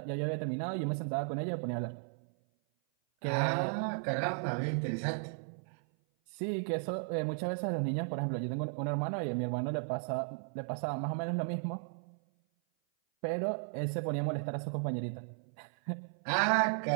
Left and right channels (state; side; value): silent; left; 54 dB below the other